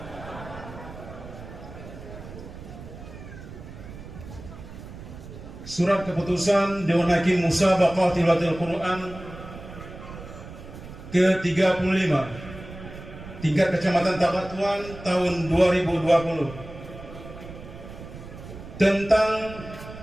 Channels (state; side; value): noise; right; rumble, 14 dB below the sound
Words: Surat keputusan Dewan Hakim Musabaqah Tilawatil Quran ke-35 tingkat Kecamatan Tabatuan tahun 2020 tentang